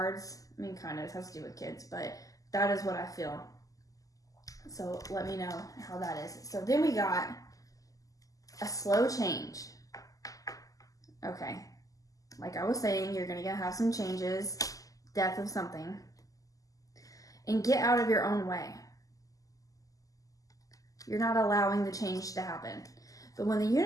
I mean, kind of, it has to do with kids, but that is what I feel. So let me know how that is. So then we got a slow change. Okay. Like I was saying, you're going to have some changes, death of something, and get out of your own way. You're not allowing the change to happen. But when the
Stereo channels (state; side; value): late; right; 0.17 ms